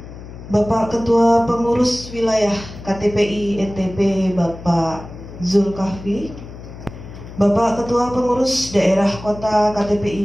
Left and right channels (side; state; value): left; noise; hum, 14 dB below the sound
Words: Bapak Ketua Pengurus Wilayah KTPI NTB Bapak Zulkafli, Bapak Ketua Pengurus Daerah Kota